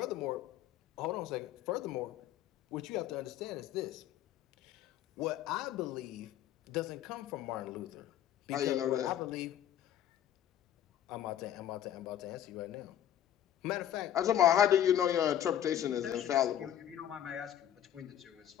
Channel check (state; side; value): quieter; right; 11.0 dB